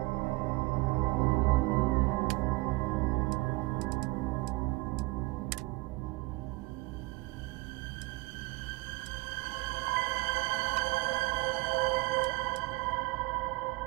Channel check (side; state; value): left; quieter; 23.6 dB